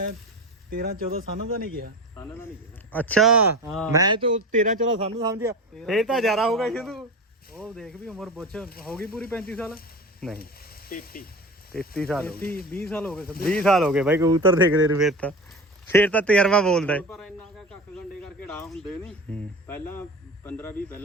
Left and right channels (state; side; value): normal; both; correlation 0.30